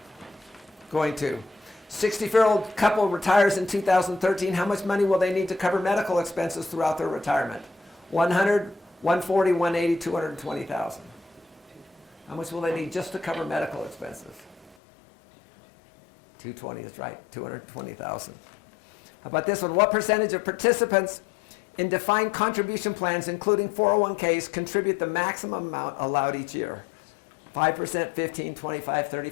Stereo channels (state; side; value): drops out; right; at 14.8 s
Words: going to. 64-year-old couple retires in 2013. How much money will they need to cover medical expenses throughout their retirement? 100, 140, 180, 220,000. How much will they need just to cover medical expenses? 220 is right, 220,000. How about this one? What percentage of participants in defined contribution plans, including 401ks, contribute the maximum amount allowed each year? 5%, 15, 25,